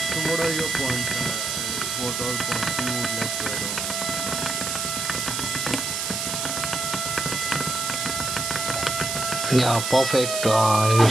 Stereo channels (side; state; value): right; noise; hiss, 2 dB below the sound